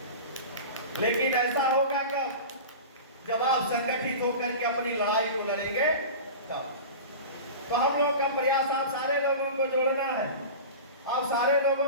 लेकिन ऐसा होगा कब? जब आप संगठित होकर के अपनी लड़ाई को लड़ेंगे तब। तो हम लोग का प्रयास आप सारे लोगों को जोड़ना है, आप सारे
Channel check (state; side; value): inverted; both; correlation -0.32